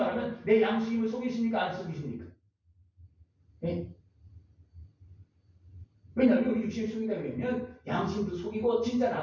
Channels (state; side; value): identical; both; correlation 1.00